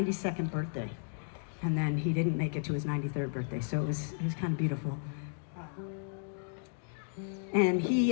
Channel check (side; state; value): right; silent; digital silence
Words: birthday. And then he didn't make it to his 93rd birthday, so it was kind of beautiful. And